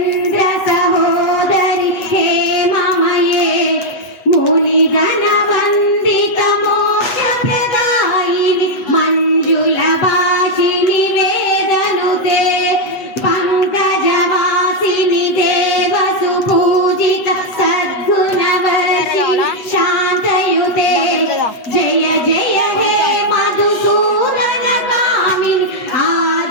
सहोदरी हेममये मुनिगण वंदित मोक्ष प्रदायिनी मंजुल भाषिणी वेदनुते पंकजवासिनी देव सुपूजित सद्गुणवर्षिणी शांतयुते जय जय हे मधुसूदन कामिनी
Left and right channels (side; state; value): right; late; 8.3 ms